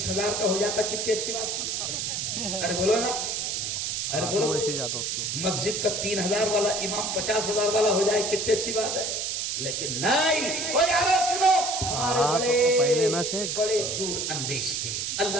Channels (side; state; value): right; noise; hiss, 1 dB below the sound